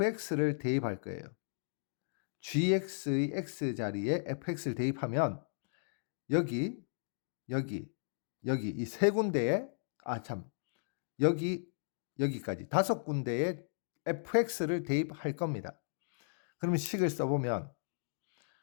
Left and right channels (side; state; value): right; silent; digital silence